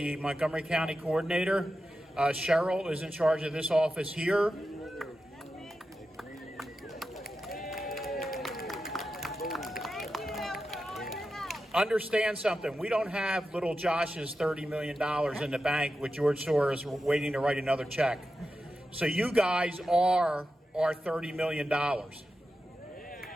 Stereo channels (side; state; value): both; normal; correlation 0.91